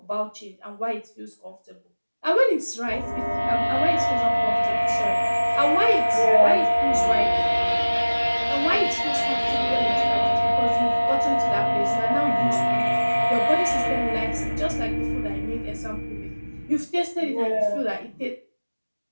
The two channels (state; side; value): inverted; both; correlation -1.00